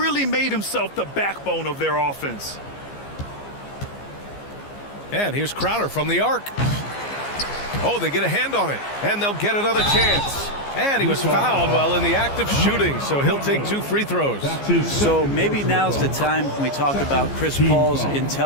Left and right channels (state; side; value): late; right; 15 ms